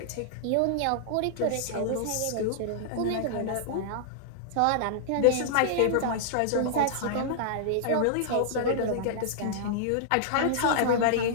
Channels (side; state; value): both; different; correlation -0.01